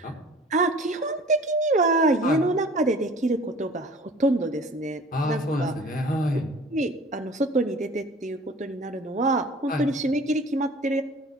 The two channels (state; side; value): normal; both; correlation 0.46